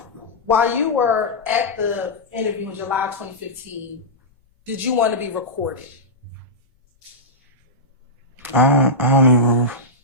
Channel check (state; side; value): normal; both; correlation -0.10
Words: while you were at the interview in July 2015, did you want to be recorded? I don't even.